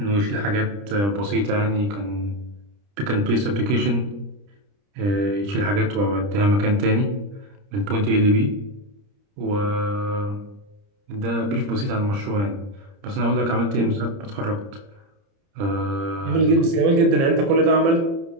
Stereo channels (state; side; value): late; left; 30 ms